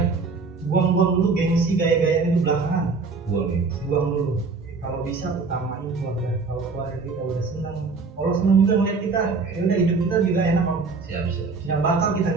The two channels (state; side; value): quieter; left; 4.3 dB